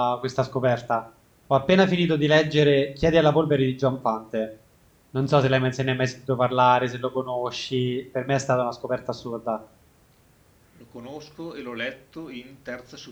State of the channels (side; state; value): both; identical; correlation 1.00